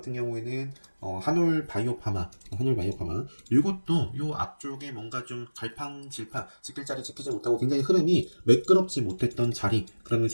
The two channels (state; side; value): inverted; both; correlation -1.00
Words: 경우에는 한올 바이오파마 이것도 요 앞쪽에 뭔가 좀 갈팡질팡 지킬 자리 지키지 못하고 굉장히 흐름이 매끄럽지 못했던 자리